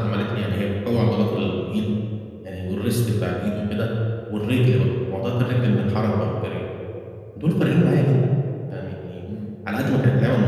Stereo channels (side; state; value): both; identical; correlation 1.00